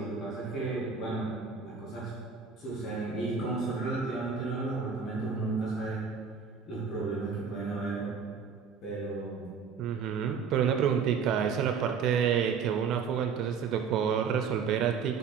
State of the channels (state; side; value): quieter; left; 6.0 dB